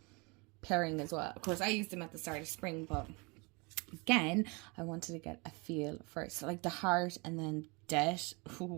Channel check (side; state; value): left; quieter; 29.0 dB